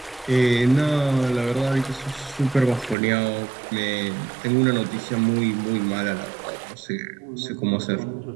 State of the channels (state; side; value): drops out; left; at 3.0 s